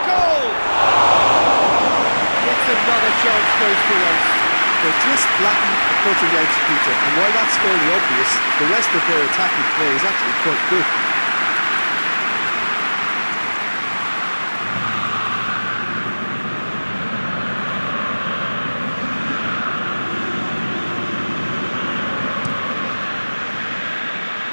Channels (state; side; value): inverted; both; correlation -1.00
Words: goal! It's another chance goes to waste. They're just lacking the cutting edge, Peter, and while that's fairly obvious, the rest of their attacking play is actually quite good.